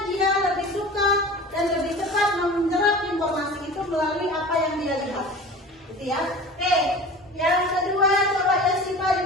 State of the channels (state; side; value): normal; both; correlation 0.38